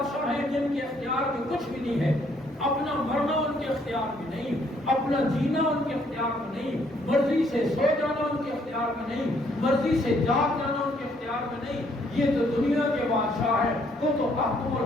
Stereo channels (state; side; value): normal; both; correlation 0.68